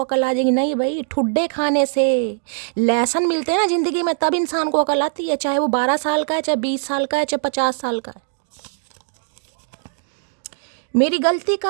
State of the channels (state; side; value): silent; left; digital silence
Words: अकल आ जाएगी। नहीं भाई, ठुड्डे खाने से लेसन मिलते हैं ना ज़िंदगी में, तब इंसान को अकल आती है। चाहे वो 12 साल का है, चाहे 20 साल का है, चाहे 50 साल का है। मेरी गलती